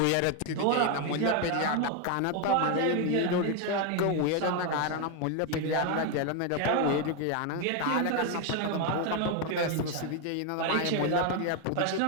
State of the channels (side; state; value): both; different; correlation 0.01